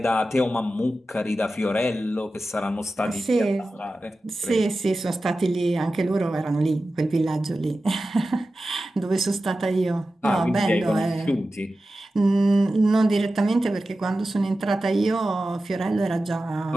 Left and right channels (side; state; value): both; normal; correlation 0.94